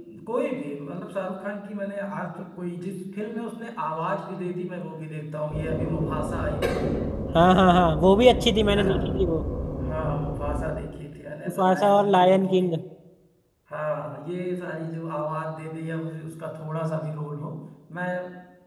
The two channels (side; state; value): both; identical; correlation 1.00